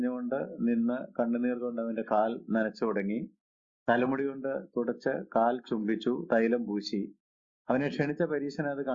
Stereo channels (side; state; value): both; identical; correlation 1.00